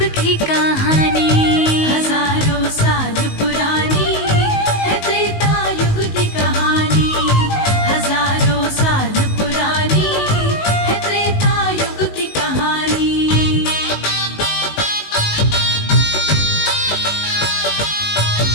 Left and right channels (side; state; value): right; late; 19 ms